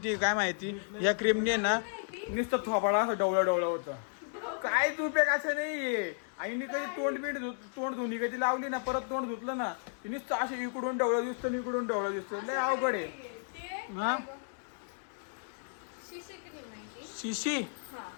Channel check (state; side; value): silent; right; digital silence